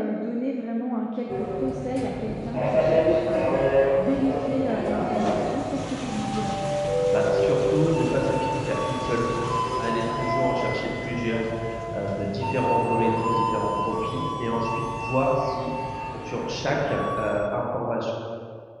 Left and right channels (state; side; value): identical; both; correlation 1.00